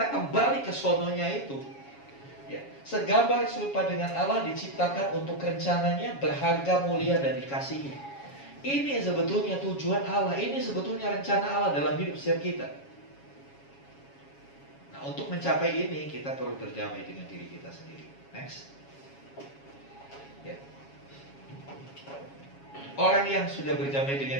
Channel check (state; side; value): late; right; 7.2 ms